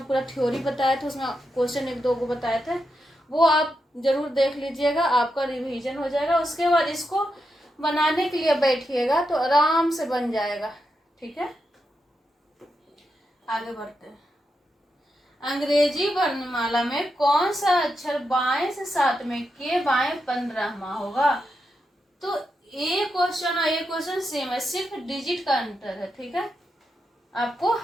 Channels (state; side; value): normal; both; correlation 0.85